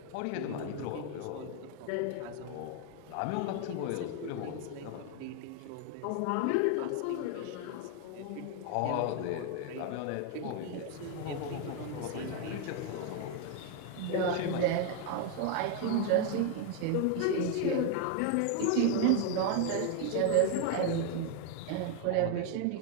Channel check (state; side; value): different; both; correlation 0.01